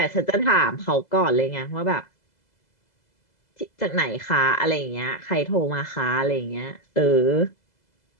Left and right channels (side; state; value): right; late; 2.0 ms